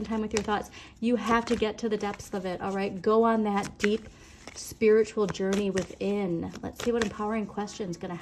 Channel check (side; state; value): both; identical; correlation 1.00